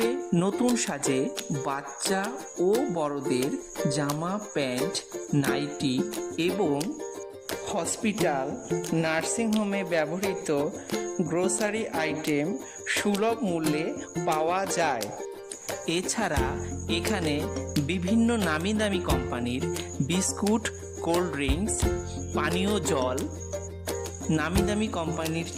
নতুন সাজে বাচ্চা ও বড়দের জামা প্যান্ট নাইটি এবং হসপিটাল নার্সিংহোমে ব্যবহৃত গ্রোসারি আইটেম সুলভ মূল্যে পাওয়া যায়। এছাড়া এখানে বিভিন্ন নামি দামি কোম্পানির বিস্কুট, কোল্ড ড্রিঙ্কস, পানীয় জল, নামি দামি কোম্পানির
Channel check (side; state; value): both; identical; correlation 1.00